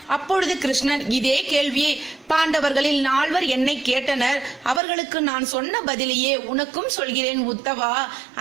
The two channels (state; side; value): drops out; left; at 4.8 s